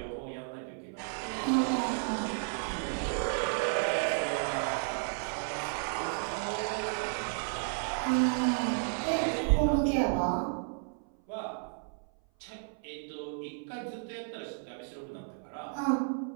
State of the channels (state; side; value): silent; left; 56 dB below the other